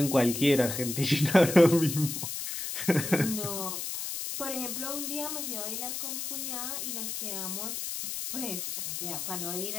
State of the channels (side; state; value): left; noise; hiss, 5 dB below the sound